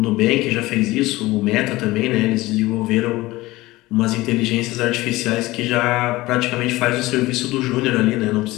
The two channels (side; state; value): right; quieter; 19.2 dB